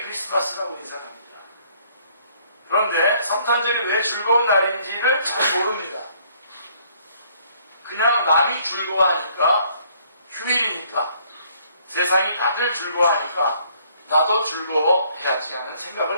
크리스마스라고 인사를 합니다. 그런데 성탄절이 왜 즐거운 날인지를 잘 모릅니다. 그냥 남이 즐거워하니까, 휴일이니까, 세상이 다들 즐거워하니까 나도 즐거워해야지 하는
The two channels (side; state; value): both; inverted; correlation -0.63